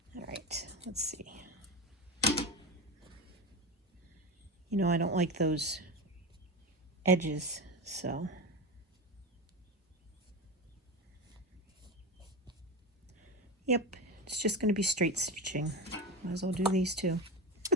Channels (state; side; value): normal; both; correlation 0.21